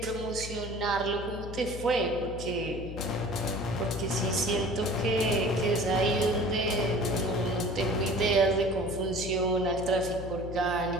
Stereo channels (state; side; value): noise; left; hum, 9 dB below the sound